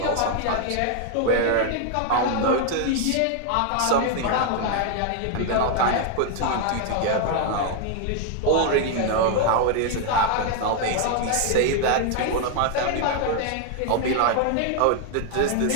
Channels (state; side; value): different; both; correlation 0.00